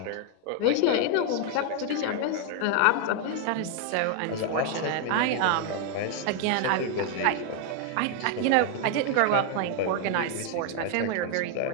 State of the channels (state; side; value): different; both; correlation 0.00